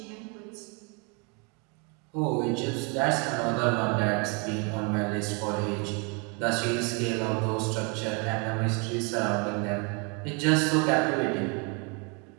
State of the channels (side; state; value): left; quieter; 33.1 dB